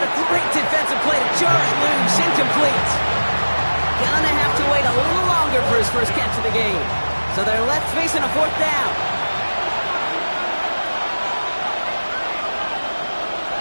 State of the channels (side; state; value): both; inverted; correlation -1.00